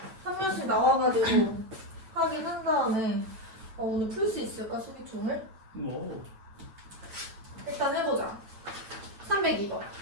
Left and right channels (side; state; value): left; late; 9.3 ms